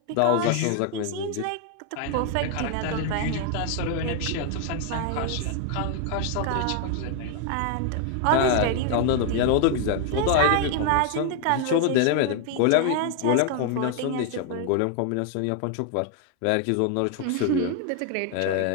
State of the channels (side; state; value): both; different; correlation 0.01